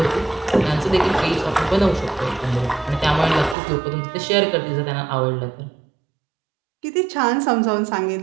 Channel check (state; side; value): drops out; left; at 3.6 s